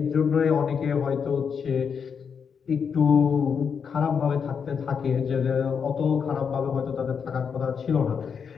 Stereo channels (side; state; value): right; quieter; 6.6 dB